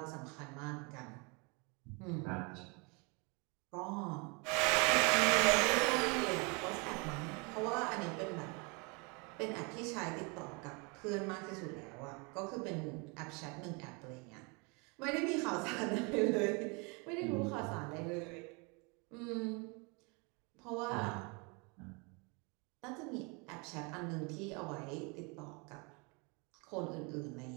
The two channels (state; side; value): quieter; left; 30.8 dB